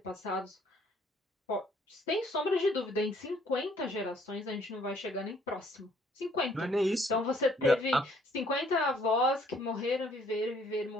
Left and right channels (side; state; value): both; normal; correlation 0.62